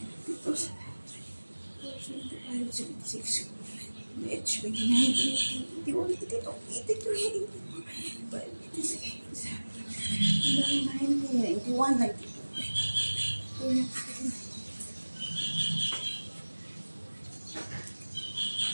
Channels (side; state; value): both; inverted; correlation -1.00